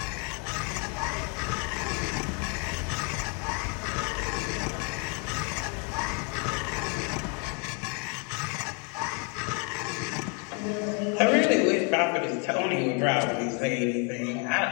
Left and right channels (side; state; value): right; quieter; 36.1 dB